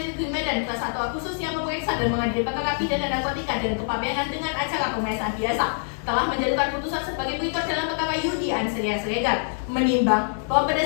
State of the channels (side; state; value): right; silent; digital silence